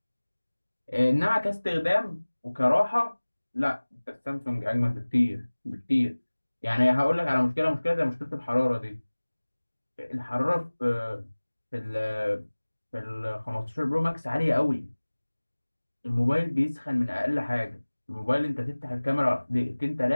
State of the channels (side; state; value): both; inverted; correlation -1.00